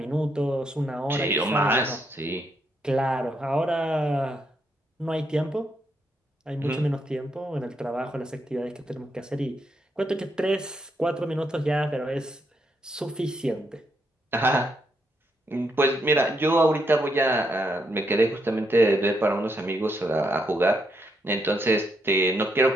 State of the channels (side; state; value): both; normal; correlation 0.78